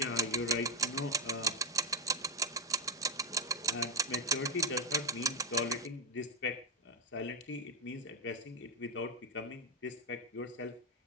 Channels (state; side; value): normal; both; correlation 0.09